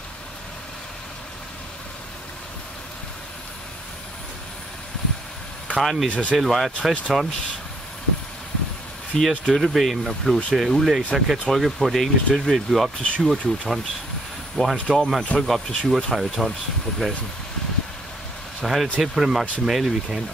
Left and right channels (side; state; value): both; normal; correlation 0.69